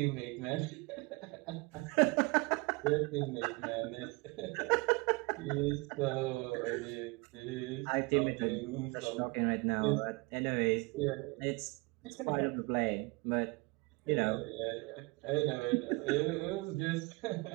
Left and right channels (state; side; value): quieter; left; 26.7 dB